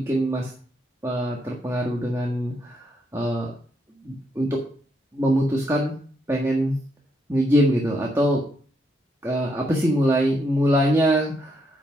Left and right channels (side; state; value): both; normal; correlation 0.77